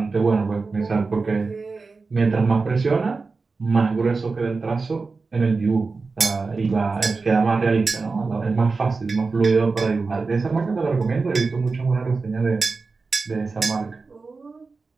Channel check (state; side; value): quieter; left; 4.2 dB